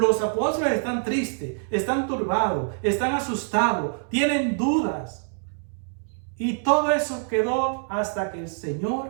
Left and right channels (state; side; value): silent; left; 62 dB below the other